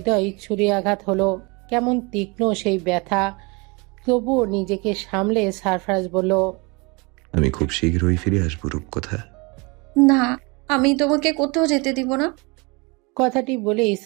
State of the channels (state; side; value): quieter; left; 28.3 dB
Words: ছুরি আঘাত হলো। কেমন তীক্ষ্ণ সেই ব্যথা। তবুও নিজেকে সামলে সারফরাজ বলল, আমি খুব শীঘ্রই ফিরে আসবো রূপকথা। না, আমি তোমাকে কোথাও যেতে দিব না। কথাটি বলেই